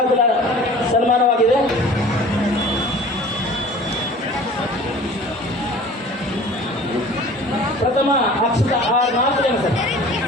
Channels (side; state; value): both; normal; correlation 0.44